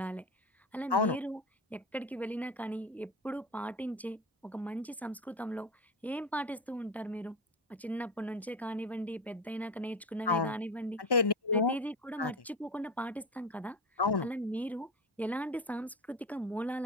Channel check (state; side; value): normal; both; correlation 0.24